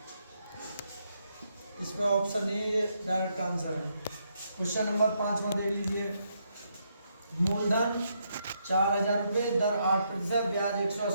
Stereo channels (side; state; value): both; inverted; correlation -0.77